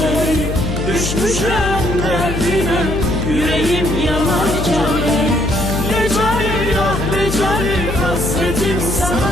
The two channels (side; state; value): left; noise; hum, 4 dB below the sound